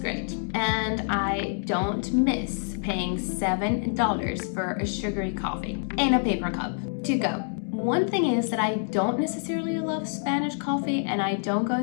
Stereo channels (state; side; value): silent; right; digital silence